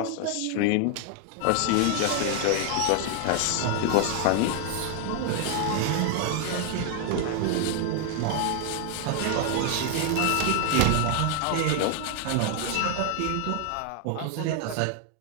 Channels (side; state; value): both; different; correlation 0.00